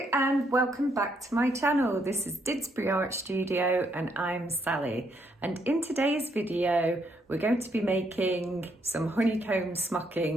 and welcome back to my channel. This is Didsbury Art Studio and I'm Sally, and in today's video we're going to be making some honeycomb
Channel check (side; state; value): both; normal; correlation 0.74